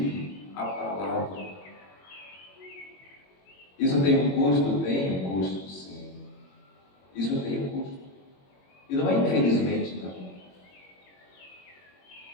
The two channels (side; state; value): right; late; 21 ms